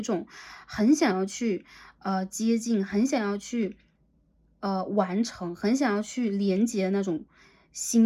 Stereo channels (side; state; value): both; identical; correlation 1.00